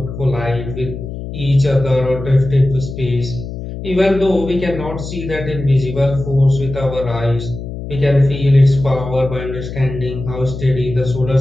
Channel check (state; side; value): noise; left; hum, 9 dB below the sound